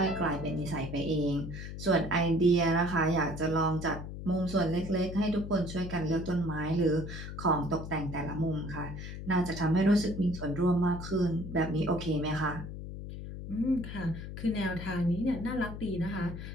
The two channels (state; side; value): noise; left; hum, 9 dB below the sound